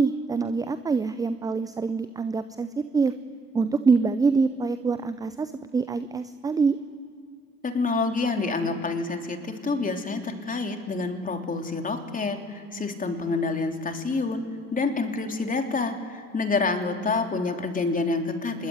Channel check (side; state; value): both; normal; correlation 0.59